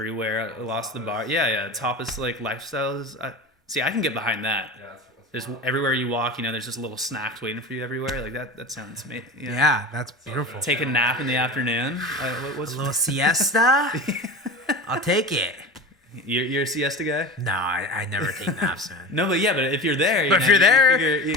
I lost the bar. Yeah, tapas like lifestyles. See, I can get behind that. Yeah, that's There's wild. everywhere you walk, there's just little snacks waiting for you everywhere. Like that sounds amazing. Yeah, that's beautiful. Take a nap in the afternoon. What's A little siesta. I'll take it. you're a siesta guy? No, I never take naps, man. No, but if you're there, But if you're there,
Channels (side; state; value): both; normal; correlation 0.31